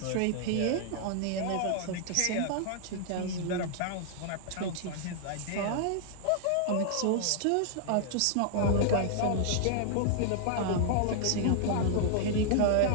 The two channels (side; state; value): both; different; correlation -0.01